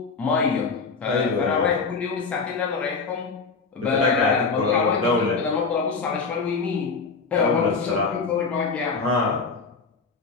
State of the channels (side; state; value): right; quieter; 4.6 dB